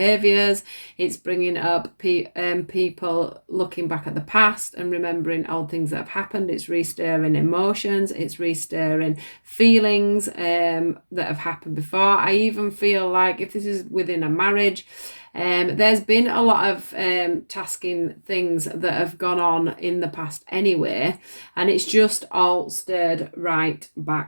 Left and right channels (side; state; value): both; inverted; correlation -1.00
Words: It's bringing up people looking back at the past and remembering old things that have happened. It's restirring emotions. It's restirring feelings that have happened before. I even feel like if this is within a marriage, there's been a lot of tasking things that have gone on in the past anyway, and it's just all stirred right